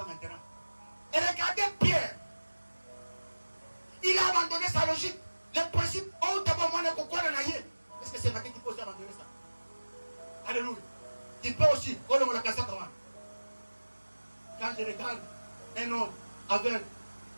maintenant. Et regardez Pierre. Il a abandonné sa logique. Le principe, oh, d'abord, moi, est-ce que c'est ma qui peut aussi abandonner ça? Alléluia. Tu peux aussi, oh, on l'a cassé comment? Quand je regarde un homme avec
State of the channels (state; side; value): inverted; both; correlation -1.00